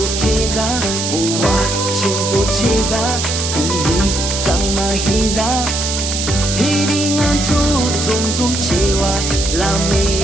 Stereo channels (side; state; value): right; noise; hiss, 3 dB below the sound